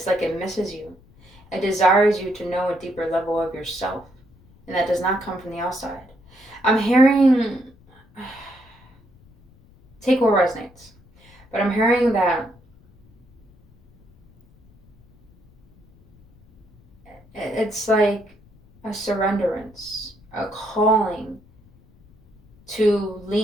like it misses you. It desires you to know a deeper level of yourself. And that does not come from the outside. I'm hearing, take what resonates, but I'm hearing that it's like a surrenderance, a calling to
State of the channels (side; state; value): left; noise; rumble, 28 dB below the sound